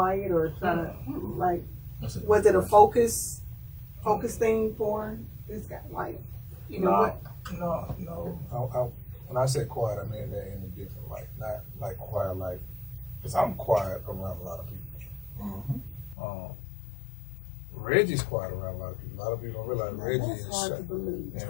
or trying to like? Was it a focus thing for this guy? Like, you know what? No. When I said quiet, I mean that in a different light. Not like quiet, like, because I'm quiet around a lot of people. Reggie's quiet around a lot of people. A lot of people don't realize Reggie is shy.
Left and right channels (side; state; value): right; drops out; at 16.2 s